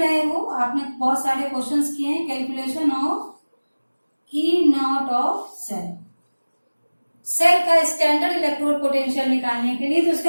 हो, आपने बहुत सारे क्वेश्चंस किए हैं। Calculation of E naught of cell, cell का स्टैंडर्ड इलेक्ट्रोड पोटेंशियल निकालने के लिए तो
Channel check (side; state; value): both; inverted; correlation -1.00